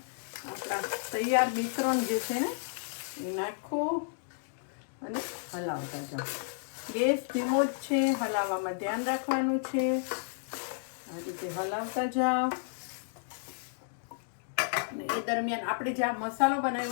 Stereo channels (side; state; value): right; silent; digital silence